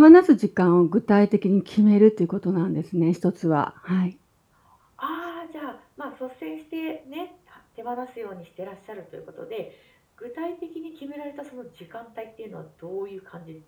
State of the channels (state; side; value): identical; both; correlation 1.00